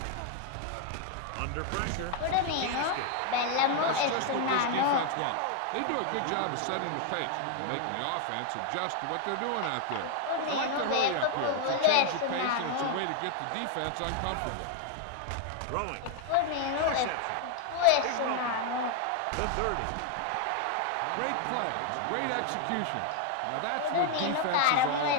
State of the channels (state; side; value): different; both; correlation 0.00